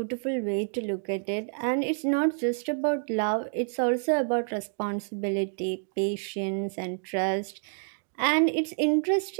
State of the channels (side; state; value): left; silent; digital silence